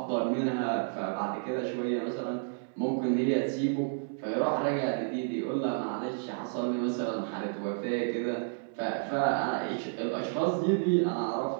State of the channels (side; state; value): left; silent; digital silence